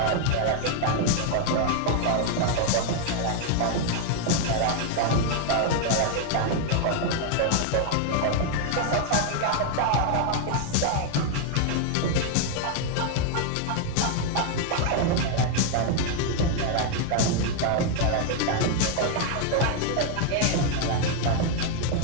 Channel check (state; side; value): different; both; correlation 0.00